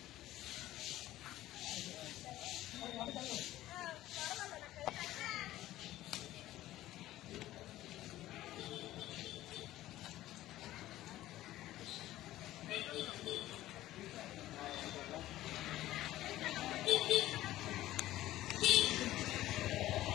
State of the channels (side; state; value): right; quieter; 15.0 dB